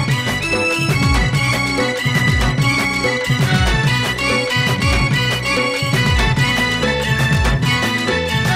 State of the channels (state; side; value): identical; both; correlation 1.00